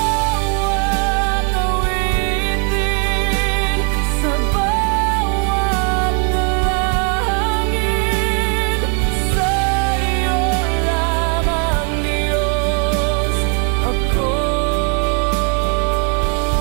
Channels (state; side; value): quieter; left; 37.5 dB